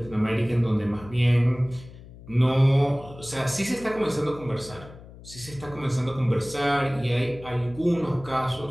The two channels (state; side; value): noise; left; hum, 18 dB below the sound